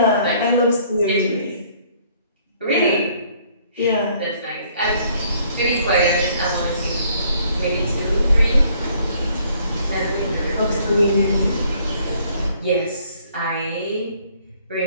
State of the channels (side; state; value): both; inverted; correlation -0.63